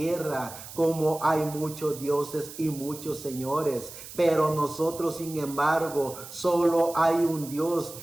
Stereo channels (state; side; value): noise; right; hiss, 14 dB below the sound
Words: como hay muchos dioses y muchos señores. Pero nosotros, sin embargo, solo hay un Dios,